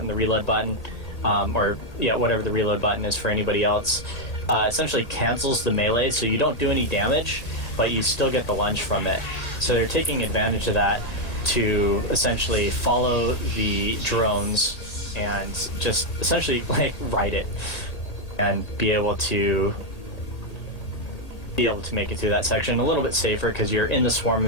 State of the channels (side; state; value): right; late; 1.7 ms